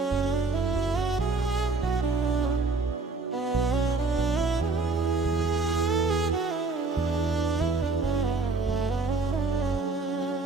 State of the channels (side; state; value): left; quieter; 3.8 dB